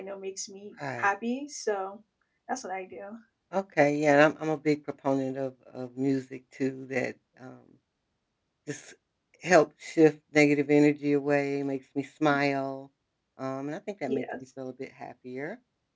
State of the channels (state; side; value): identical; both; correlation 1.00